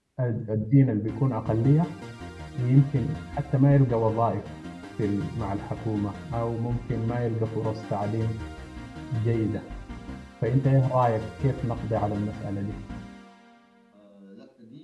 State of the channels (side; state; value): both; identical; correlation 1.00